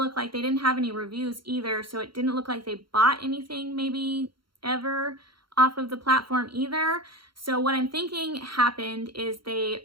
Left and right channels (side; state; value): left; late; 0.73 ms